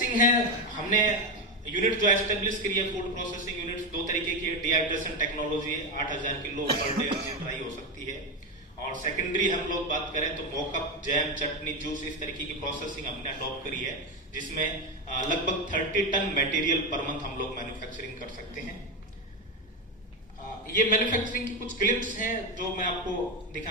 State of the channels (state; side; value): normal; both; correlation 0.13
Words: है, हमने यूनिट जो एस्टेब्लिश करी है, फूड प्रोसेसिंग यूनिट्स दो तरीके की है। Dehydration technology 8000 kilo per day dry हो सकती है। और सेकेंडरी हम लोग बात करें तो मोकअप, जैम, चटनी, जूस, इस तरीके की प्रोसेसिंग हमने अडॉप्ट करी है, जिसमें लगभग 30 टन मटेरियल पर मंथ हम लोग मैन्युफैक्चरिंग कर सकते हैं। ये मैन्युफैक्चरिंग की कुछ क्लिप्स हैं जो मैं आपको